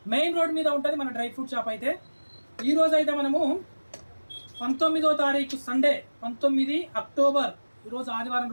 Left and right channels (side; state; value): both; inverted; correlation -1.00